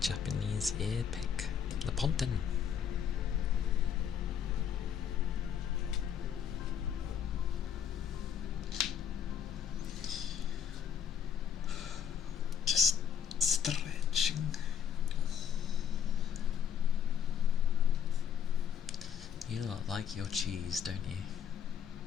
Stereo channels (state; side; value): quieter; right; 8.4 dB